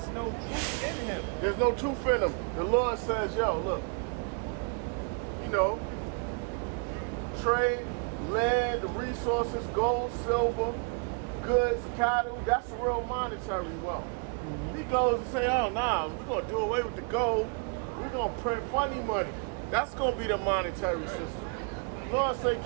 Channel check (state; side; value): quieter; left; 37.5 dB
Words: no truth in him. There's no truth in him. The Lord says, yo, look, you know, trade, land, resources, gold, silver, goods, cattle, that's the real monetary wealth. He goes and say, oh, nah, we're going to do away with the gold. We're going to print funny money. That's going to be the monetary system. Lord say,